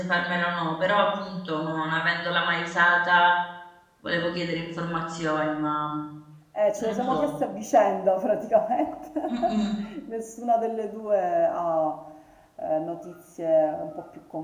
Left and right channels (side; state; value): both; identical; correlation 1.00